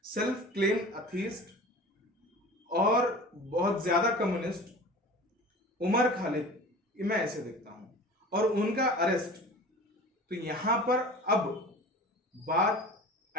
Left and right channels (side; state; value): both; normal; correlation 0.39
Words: सेल्फ क्लेम अथीस्ट और बहुत ज्यादा कम्युनिस्ट उमर खालिद, मैं ऐसे देखता हूं। और उनका अरेस्ट, तो यहां पर अब बात